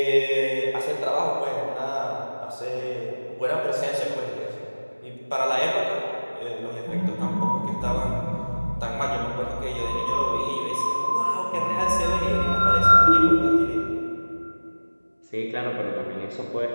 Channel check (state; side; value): inverted; both; correlation -1.00